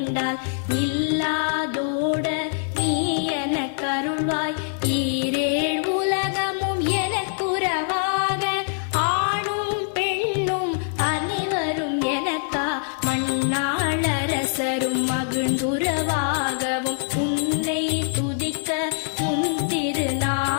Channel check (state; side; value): silent; right; digital silence